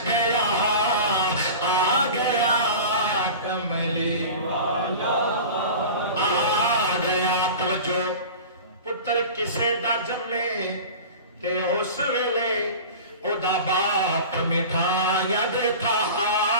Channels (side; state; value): both; inverted; correlation -0.35